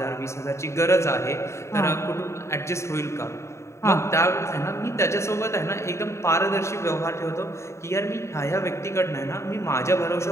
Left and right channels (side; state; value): right; late; 0.14 ms